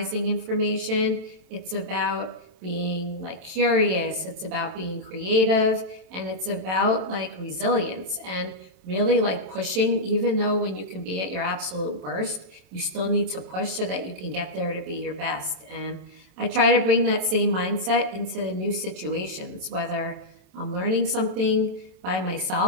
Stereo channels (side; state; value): left; late; 27 ms